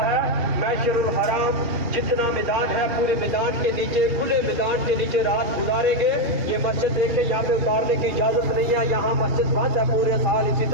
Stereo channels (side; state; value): left; late; 2.4 ms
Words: ہے. مشعر الحرام جتنا میدان ہے پورے میدان کے نیچے, کھلے میدان کے نیچے رات گزاریں گے. یہ مسجد دیکھیں یہاں پہ اتارنے کی اجازت نہیں ہے, یہاں مسجد بند ہے پورے سال. اسی